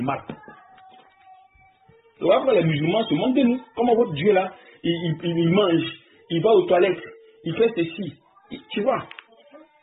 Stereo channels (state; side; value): identical; both; correlation 1.00